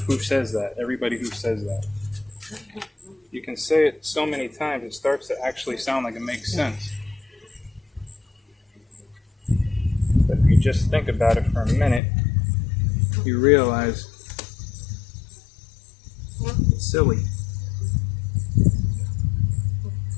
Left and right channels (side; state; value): right; drops out; at 12.0 s